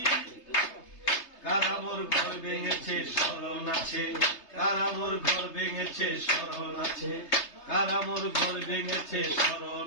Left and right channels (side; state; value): right; late; 3.3 ms